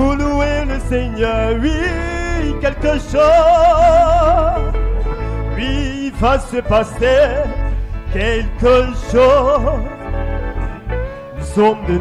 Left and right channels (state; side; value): identical; both; correlation 1.00